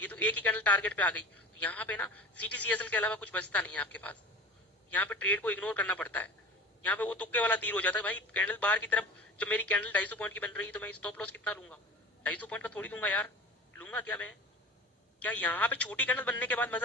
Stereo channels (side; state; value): both; normal; correlation 0.38